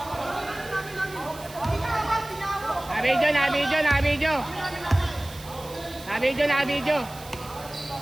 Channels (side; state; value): right; noise; hiss, 18 dB below the sound